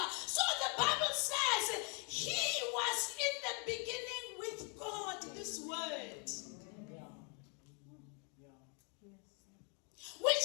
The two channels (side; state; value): right; quieter; 36.4 dB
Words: So the Bible says he was in the beginning with God, this word.